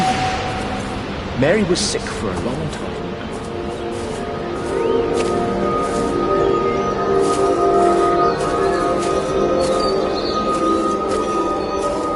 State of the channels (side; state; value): both; identical; correlation 1.00